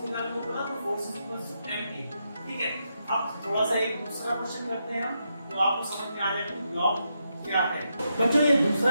निकालने को बोला तो force is equal to ma। ठीक है, अब थोड़ा सा एक दूसरा क्वेश्चन करते हैं हम, तो आपको समझ में आ जाएगा कि ब्लॉक क्या है। बच्चों ये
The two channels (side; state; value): both; inverted; correlation -0.83